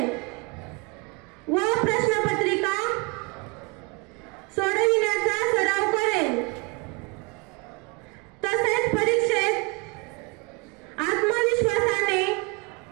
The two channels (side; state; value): left; quieter; 29.5 dB